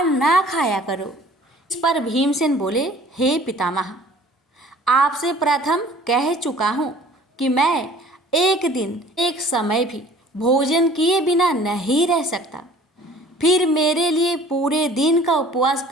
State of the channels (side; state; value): both; normal; correlation 0.50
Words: ना खाया करो। इस पर भीमसेन बोले, हे पितामह, आपसे प्रथम कह चुका हूँ कि मैं एक दिन एक समय भी भोजन किए बिना नहीं रह सकता। फिर मेरे लिए पूरे दिन का उपवास